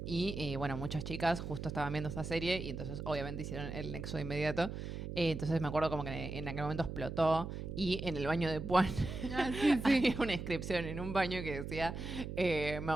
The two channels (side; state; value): right; noise; hum, 6 dB below the sound